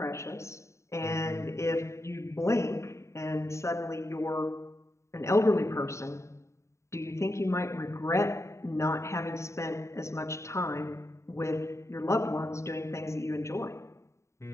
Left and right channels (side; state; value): right; late; 0.14 ms